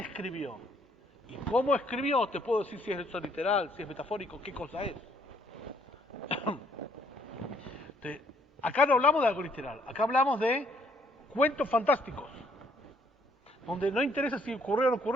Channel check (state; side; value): normal; both; correlation 0.66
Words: y cómo escribió, te puedo decir si es eso literal, si es metafórico, qué cosa es. Acá no hablamos de algo literal, acá hablamos de cuentos fantásticos, donde no interesa si ocurrió o no